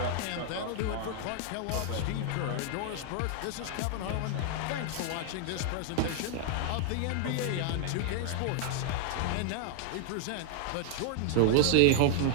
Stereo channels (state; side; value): different; both; correlation 0.00